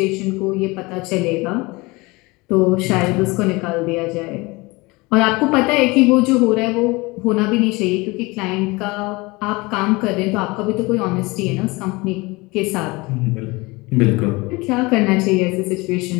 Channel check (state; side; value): quieter; right; 23.9 dB